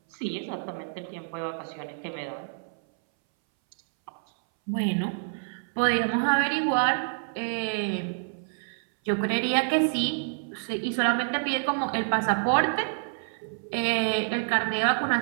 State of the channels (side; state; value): left; silent; 60 dB below the other